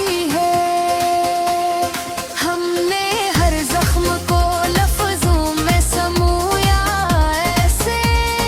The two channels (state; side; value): identical; both; correlation 1.00